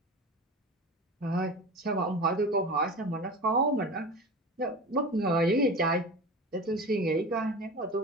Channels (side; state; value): both; normal; correlation 0.32